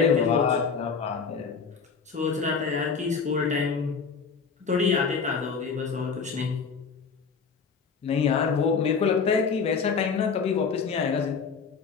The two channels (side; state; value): right; quieter; 5.6 dB